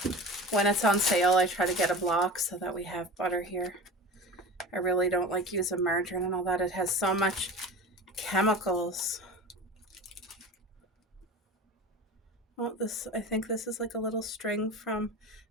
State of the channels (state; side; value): normal; both; correlation 0.33